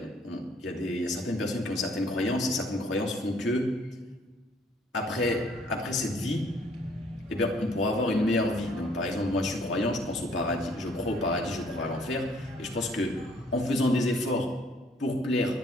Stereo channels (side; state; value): both; normal; correlation 0.61